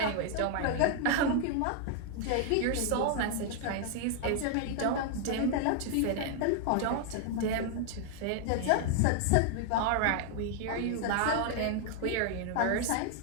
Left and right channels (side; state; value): both; different; correlation 0.00